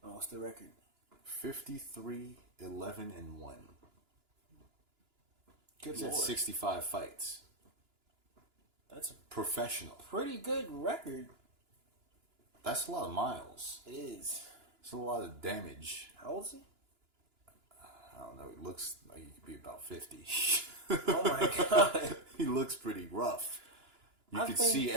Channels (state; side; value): late; left; 2.9 ms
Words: Oh, what's the record? 53, 11, and 1. Good He's lord. had 65 fights. That's a Professional. pretty good record. That's a lot of miles. It is. It's a lot of damage. How old is he? I don't know. He looks like he could be about 50. Oh my god. He looks pretty rough. You I could think- see